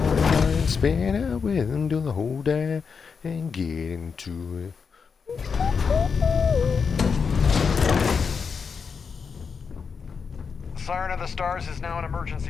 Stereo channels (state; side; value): quieter; right; 5.8 dB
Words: spin out with him, do the whole day and get into it. Siren of the Stars is now in